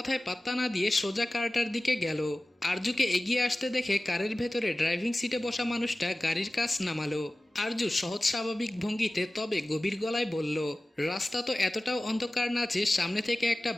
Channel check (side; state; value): both; normal; correlation 0.97